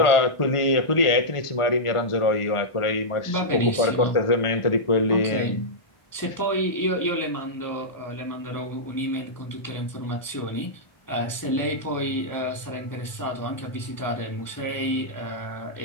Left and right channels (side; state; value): right; late; 1.5 ms